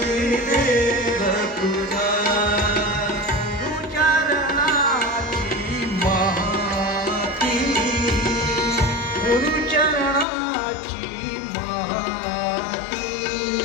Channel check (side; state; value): right; drops out; at 10.2 s